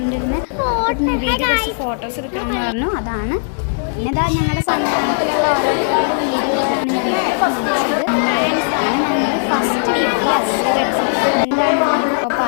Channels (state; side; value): silent; right; digital silence